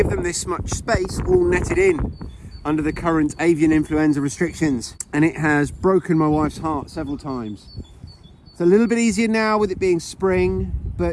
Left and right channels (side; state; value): both; identical; correlation 1.00